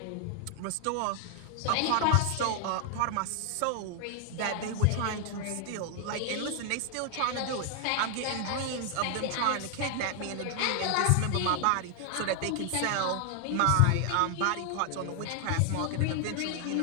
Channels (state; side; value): different; both; correlation 0.00